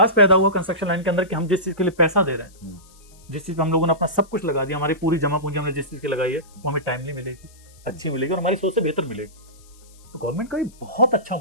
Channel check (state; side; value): noise; left; hiss, 27 dB below the sound